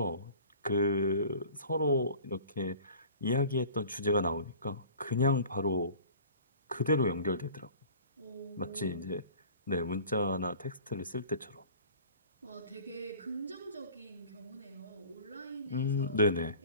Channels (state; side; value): inverted; both; correlation -0.44